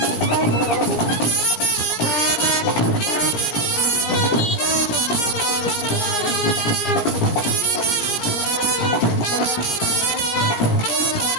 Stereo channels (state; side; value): late; right; 17 ms